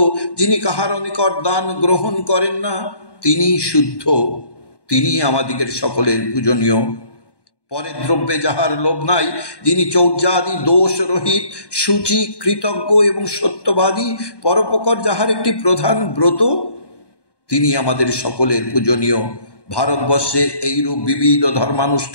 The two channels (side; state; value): right; late; 1.1 ms